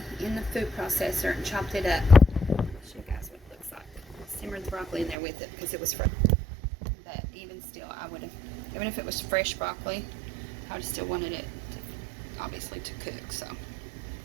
in the food processor and chopped it up. I'll show you guys what it looks like. Simmered the broccoli in there with it because it was fresh. But even still, I would have, even if it was fresh broccoli, I would have still wanted it to, obviously, to cook. So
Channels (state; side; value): drops out; left; at 5.2 s